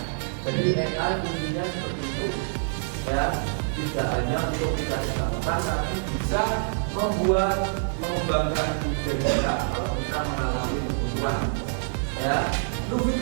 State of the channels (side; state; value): left; silent; 61 dB below the other